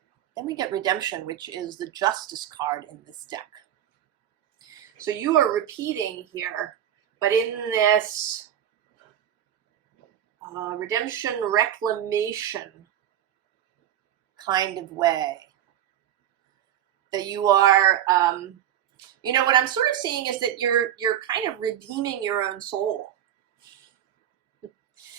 Then we get Redemption, which is the Justice card in this deck. So you are repeating here, but in this redemption, reclamation kind of way. That you are, you know, what I'm sort of seeing is that you're kind of redeeming your own soul.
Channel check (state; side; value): quieter; left; 10.9 dB